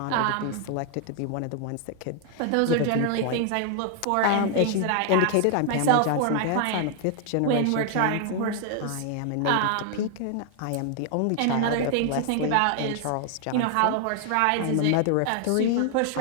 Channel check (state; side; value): different; both; correlation 0.00